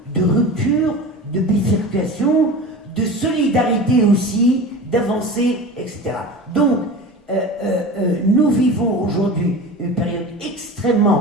de ruptures, de bifurcation, de solidarité aussi, d'avancées, etc. Donc, nous vivons aujourd'hui une période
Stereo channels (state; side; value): normal; both; correlation 0.32